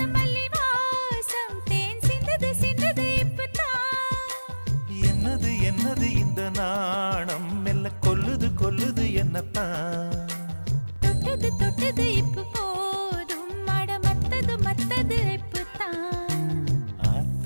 மல்லி வாசம் தேன் சிந்தது சிந்தது இப்பதான். என்னது என்னது இந்த நாணம் மெல்ல கொல்லுது கொல்லுது என்னத்தான். தொட்டது தொட்டது இப்ப போதும் மட மத்தது மத்தது இப்பதான்.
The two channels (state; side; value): inverted; both; correlation -1.00